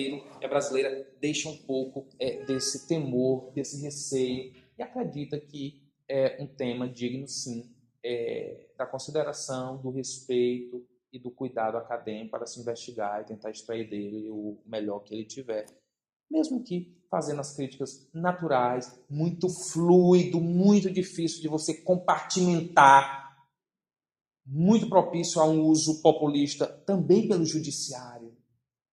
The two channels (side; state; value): both; identical; correlation 1.00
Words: e a brasileira deixam um pouco desse temor, desse receio, e acredita que é um tema digno, sim, da consideração, do respeito e do cuidado acadêmico para se investigar e tentar extrair dele o melhor que ele tiver. Mesmo que fazendo as críticas naturais, muito fluido, muito difícil de você compartimentar, muito propício a um uso populista também pelo judiciário,